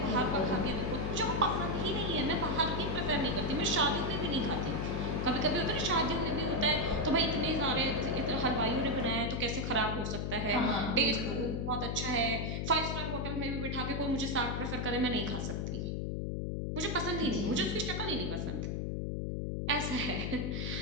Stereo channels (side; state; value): left; noise; hum, 1 dB below the sound